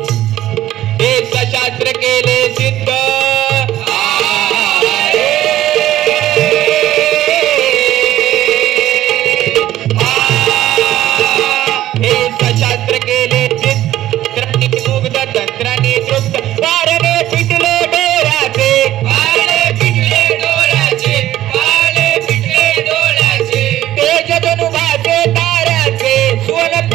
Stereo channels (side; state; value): left; quieter; 13.8 dB